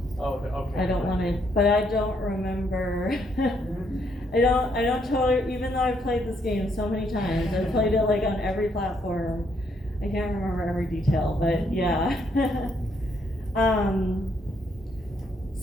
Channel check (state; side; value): normal; both; correlation 0.72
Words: want to," but I don't remember. I don't totally, even though I've played this game so many times, I've played it like on every platform. I can't remember every detail, but yeah.